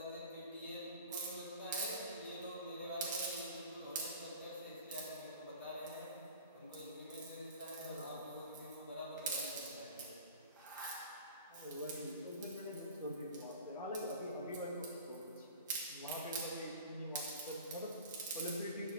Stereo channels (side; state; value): both; inverted; correlation -0.40